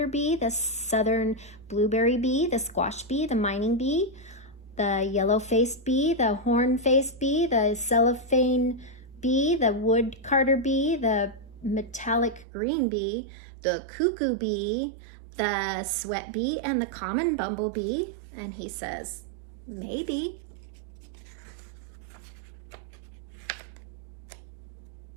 bee, the southern blueberry bee, the squash bee, the mining bee, the yellow-faced bee, the horn-faced bee, the cellophane bee, the wood carder bee, the metallic green bee, the cuckoo bee, the sweat bee, and the common bumblebee. And he says, maybe.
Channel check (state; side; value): drops out; left; at 12.5 s